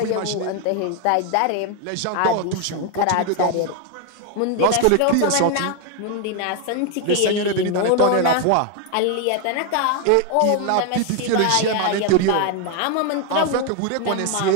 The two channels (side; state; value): both; different; correlation 0.01